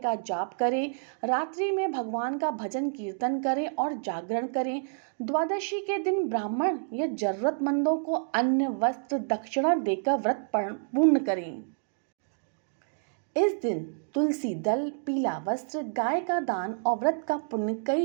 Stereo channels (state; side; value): silent; left; digital silence